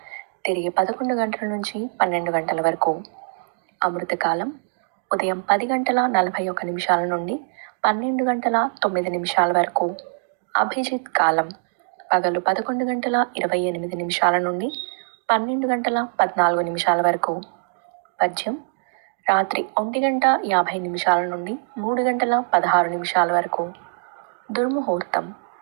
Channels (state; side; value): silent; left; digital silence